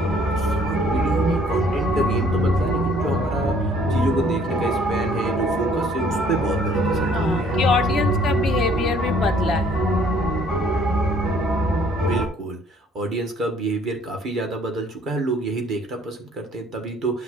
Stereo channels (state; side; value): normal; both; correlation 0.59